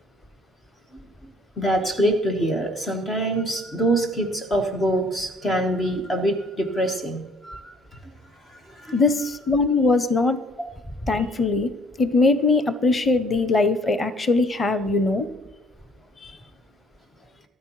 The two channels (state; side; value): normal; both; correlation 0.58